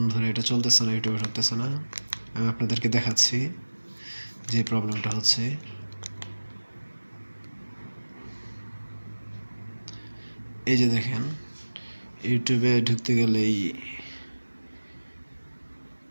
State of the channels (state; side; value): inverted; both; correlation -1.00